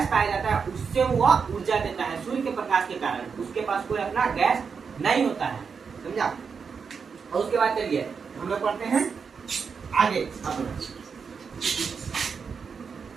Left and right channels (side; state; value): left; quieter; 5.8 dB